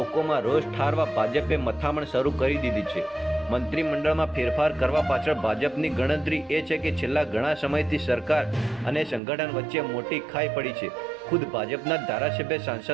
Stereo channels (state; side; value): drops out; left; at 9.2 s